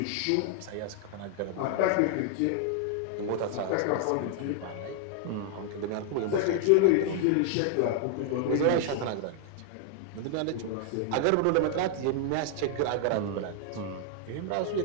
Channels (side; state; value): both; different; correlation 0.00